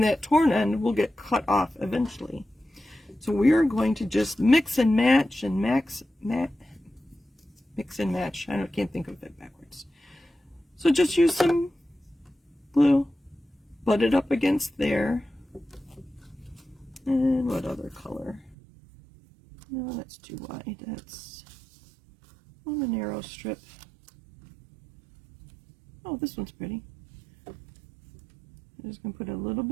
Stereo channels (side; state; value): left; drops out; at 18.6 s